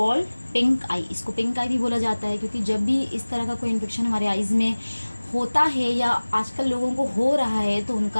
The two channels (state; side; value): inverted; both; correlation -1.00